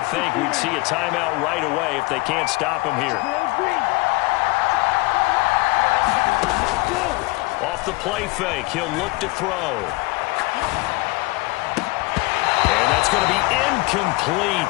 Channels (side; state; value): right; quieter; 23.6 dB